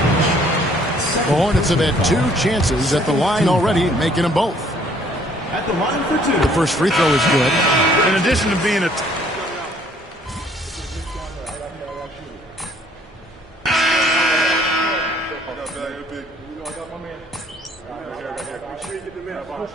The Hornets have had 2 chances at the line already, making them both. At the line for 2. The first free throw is good. In addition to being a...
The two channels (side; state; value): both; normal; correlation 0.61